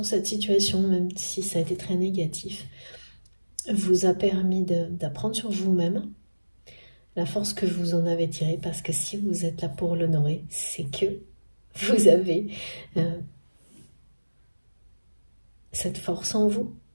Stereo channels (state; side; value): inverted; both; correlation -1.00